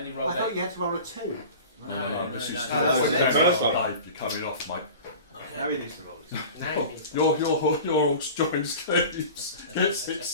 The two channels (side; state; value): both; inverted; correlation -0.38